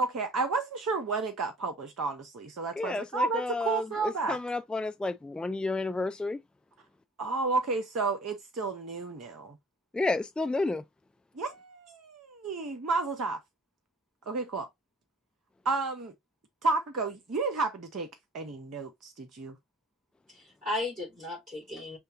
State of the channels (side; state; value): both; normal; correlation 0.51